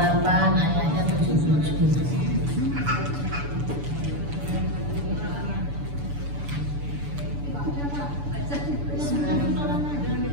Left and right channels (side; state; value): left; late; 6.9 ms